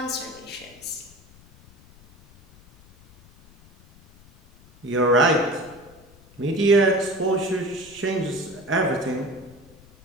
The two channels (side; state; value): left; noise; rumble, 25 dB below the sound